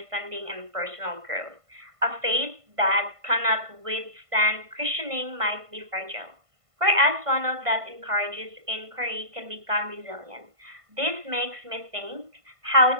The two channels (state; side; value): late; left; 1.5 ms